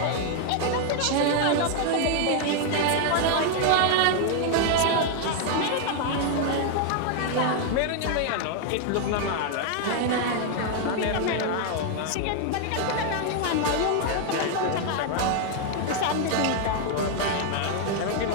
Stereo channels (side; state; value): both; different; correlation 0.00